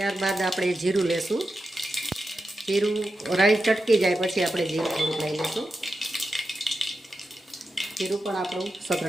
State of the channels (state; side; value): normal; both; correlation 0.90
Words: આપણે જીરું લેશું. જીરું રાઈ ચટકી જાય પછી આપણે જીરું થોડુંક લઈ લઈશું. જીરું પણ આપણું